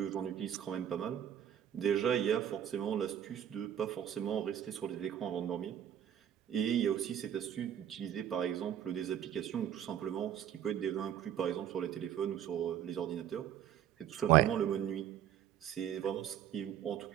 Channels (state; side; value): quieter; left; 10.2 dB